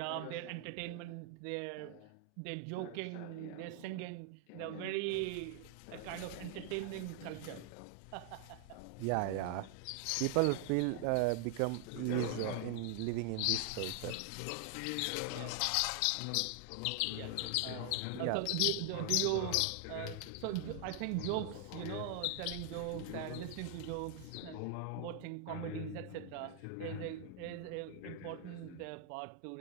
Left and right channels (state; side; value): different; both; correlation 0.00